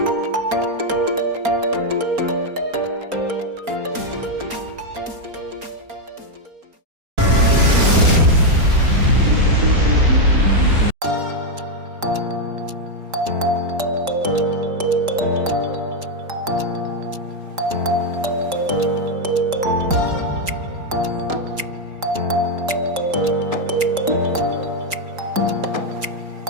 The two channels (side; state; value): left; late; 4.3 ms